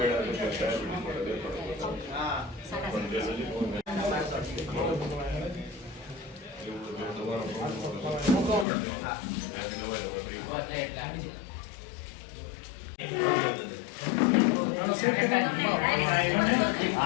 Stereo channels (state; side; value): drops out; right; at 8.7 s